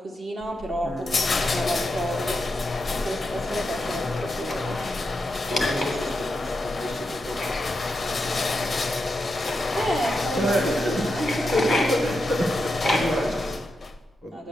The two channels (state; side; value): normal; both; correlation 0.87